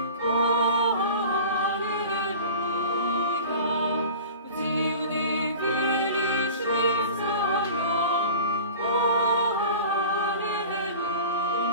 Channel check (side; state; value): both; inverted; correlation -0.38